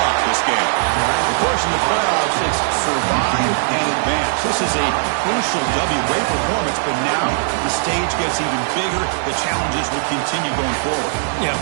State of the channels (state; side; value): silent; left; 67 dB below the other